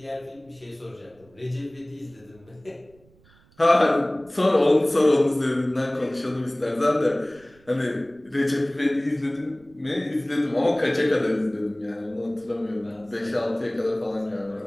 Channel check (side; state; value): right; noise; rumble, 29 dB below the sound